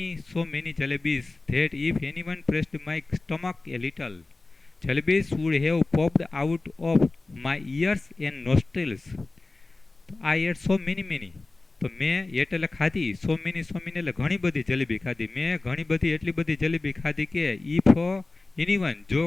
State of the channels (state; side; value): quieter; right; 3.3 dB